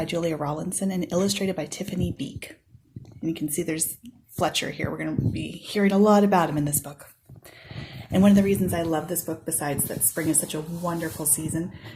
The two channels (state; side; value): identical; both; correlation 1.00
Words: Julia Rawlinson and illustrated by Tiffany Beek. And you can see there's Fletcher here. We're going to be hearing a lot about him in this book. And one of the reasons I love this book, besides that spring is such a wonderful season,